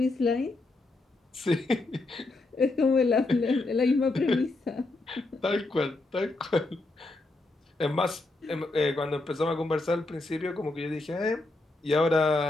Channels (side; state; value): right; quieter; 3.0 dB